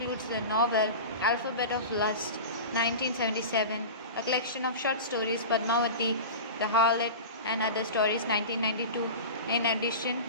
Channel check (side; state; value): both; inverted; correlation -0.30